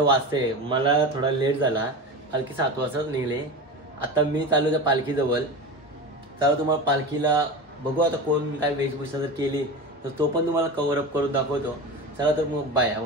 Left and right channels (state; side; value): normal; both; correlation 0.28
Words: वाजते, मला थोडा लेट झाला, पालखी 7 वाजता निघली। आता मी चालू त्या पालखीजवळ, चला तुम्हाला पालखीला बघू आता कोण काय वेशभूषा जर केली तर तो पण तुम्हाला कव्हर अप करून दाखवतो। चला तर मग बाय,